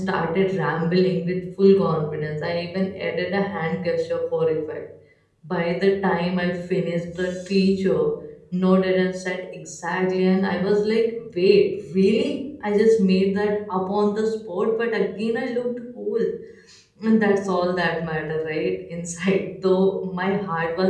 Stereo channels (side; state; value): both; identical; correlation 1.00